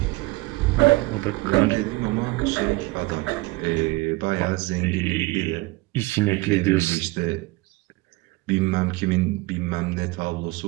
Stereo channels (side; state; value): left; quieter; 22.1 dB